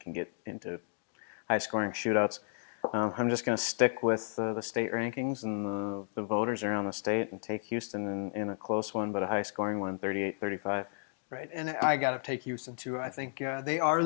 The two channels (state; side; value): silent; right; digital silence